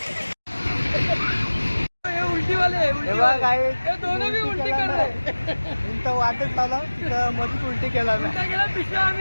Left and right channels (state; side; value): inverted; both; correlation -1.00